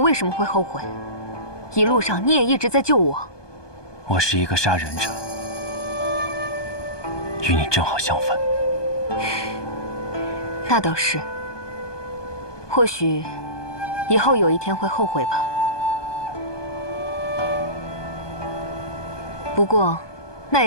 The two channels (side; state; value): right; late; 1.2 ms